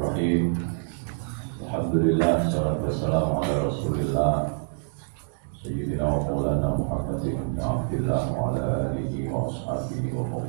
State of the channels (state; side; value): silent; left; digital silence